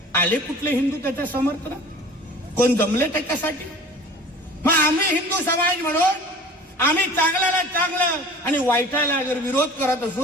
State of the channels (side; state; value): both; normal; correlation 0.43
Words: आले कुठले हिंदू त्याच्या समर्थनात? कोण जमले त्याच्यासाठी? मग आम्ही हिंदू समाज म्हणून आम्ही चांगल्याला चांगलं आणि वाईटाला जर विरोध करत